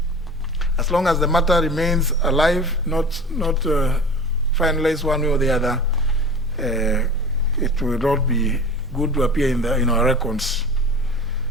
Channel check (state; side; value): normal; both; correlation 0.38